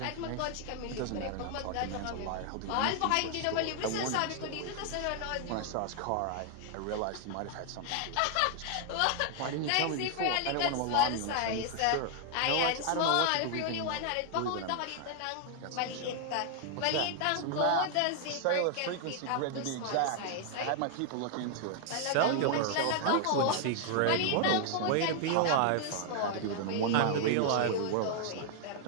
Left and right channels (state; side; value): different; both; correlation 0.00